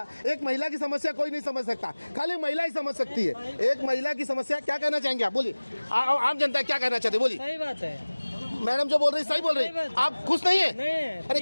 एक महिला की समस्या कोई नहीं समझ सकता, खाली महिला ही समझ सकती है। एक महिला की समस्या, क्या कहना चाहेंगे आप? बोलिए, आम जनता क्या कहना चाहते, बोलिए। सही बात है, मैडम जो बोल रही सही बोल रही। आप खुश नहीं है? नहीं। अरे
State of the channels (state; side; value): inverted; both; correlation -1.00